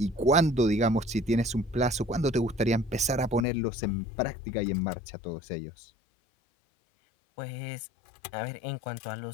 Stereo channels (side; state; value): right; drops out; at 3.5 s